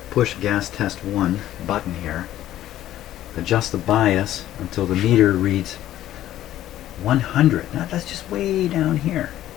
push gas test 1 button here, adjust the bias until the meter reads 100. Now that's just way down here.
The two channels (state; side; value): quieter; right; 13.2 dB